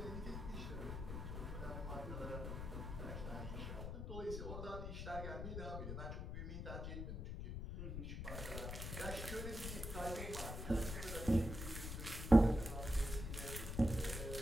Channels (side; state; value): left; noise; rumble, 5 dB below the sound